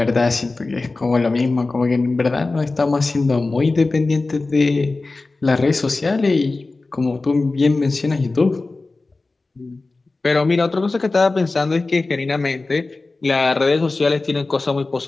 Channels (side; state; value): right; quieter; 3.5 dB